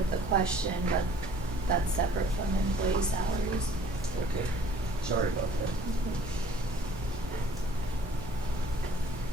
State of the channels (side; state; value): both; normal; correlation 0.53